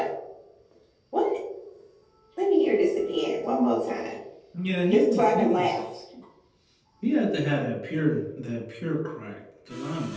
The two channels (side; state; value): both; identical; correlation 1.00